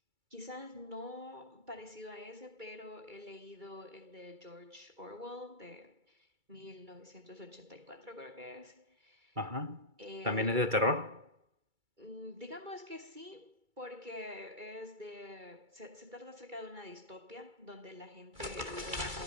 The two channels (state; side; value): late; left; 2.3 ms